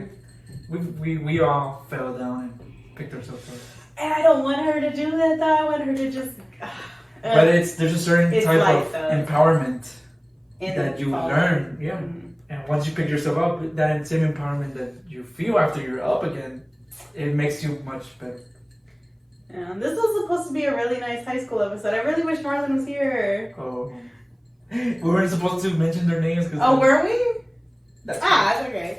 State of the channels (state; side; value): identical; both; correlation 1.00